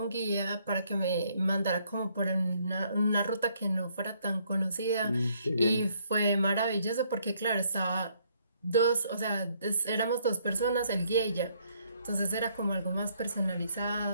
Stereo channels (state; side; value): inverted; both; correlation -0.68